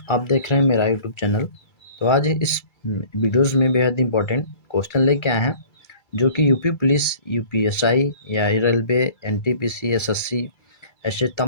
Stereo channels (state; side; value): late; right; 2.3 ms